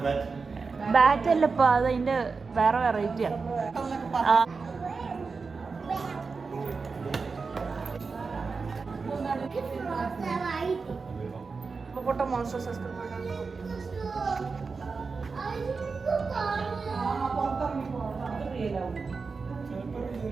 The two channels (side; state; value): left; quieter; 4.6 dB